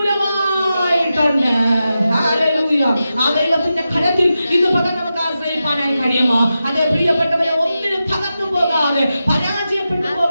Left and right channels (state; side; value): inverted; both; correlation -0.91